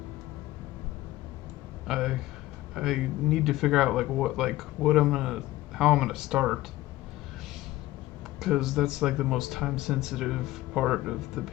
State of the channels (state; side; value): quieter; right; 16.9 dB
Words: I I need to figure out what I'm gonna how I'm gonna start, because that's like the most time sensitive part of the